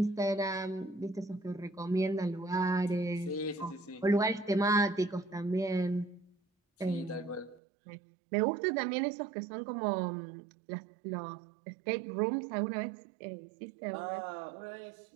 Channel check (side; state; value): left; drops out; at 7.6 s